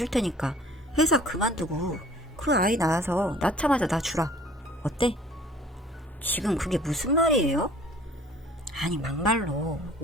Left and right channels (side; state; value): both; normal; correlation 0.51